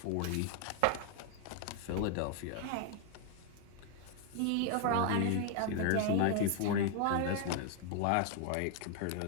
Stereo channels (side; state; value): both; different; correlation 0.00